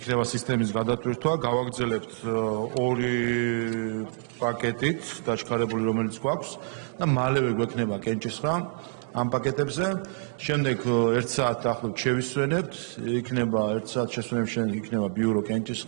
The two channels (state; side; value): silent; left; digital silence